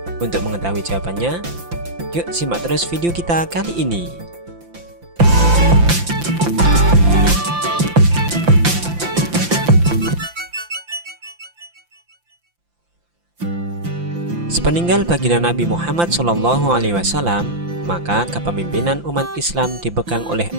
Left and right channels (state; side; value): late; left; 5.8 ms